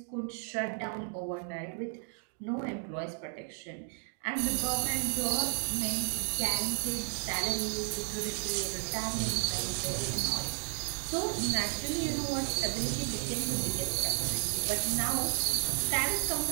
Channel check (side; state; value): left; silent; 56 dB below the other